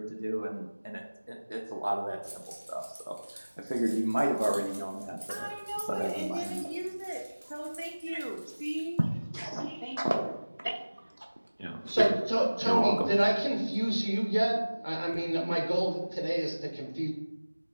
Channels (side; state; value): both; inverted; correlation -1.00